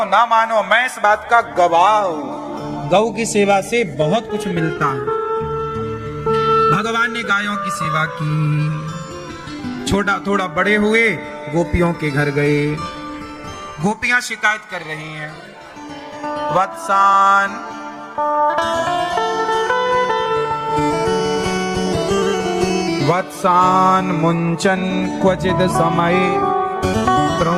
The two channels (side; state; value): both; identical; correlation 1.00